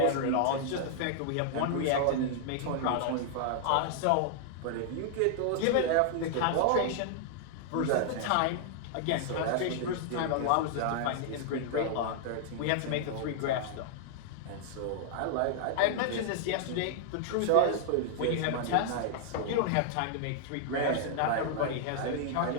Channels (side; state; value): both; different; correlation -0.01